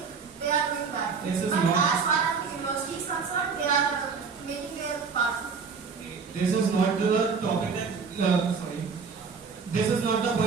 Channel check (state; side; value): quieter; left; 5.5 dB